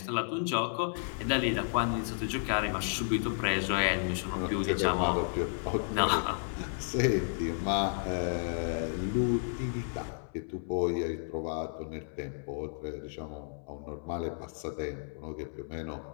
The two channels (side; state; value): right; silent; 56 dB below the other